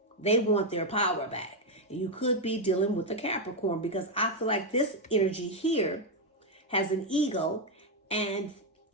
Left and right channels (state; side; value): normal; both; correlation 0.02